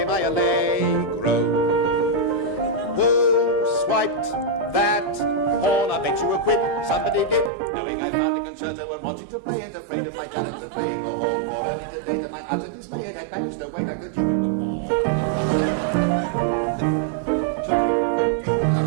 my allegro. Who swiped that horn? I bet you a quid somebody did, knowing I found a concerto and wanted to play it, afraid of my talent at playing the horn. For early today, to my utter dismay, it had managed to wait like the dew in the morn. Tootie.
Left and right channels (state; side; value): drops out; left; at 7.5 s